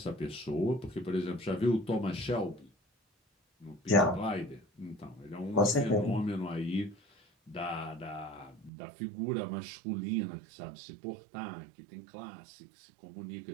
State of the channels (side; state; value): left; drops out; at 8.7 s